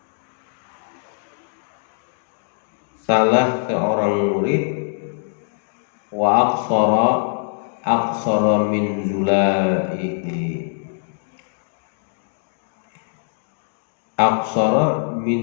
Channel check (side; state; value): right; silent; digital silence